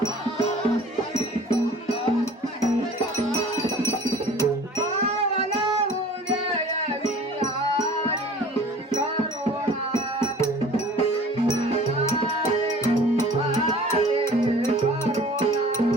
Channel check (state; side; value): normal; both; correlation 0.46